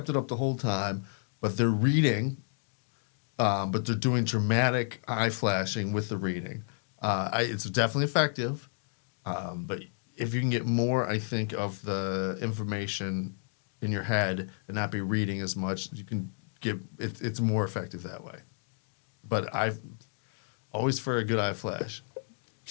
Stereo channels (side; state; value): right; silent; digital silence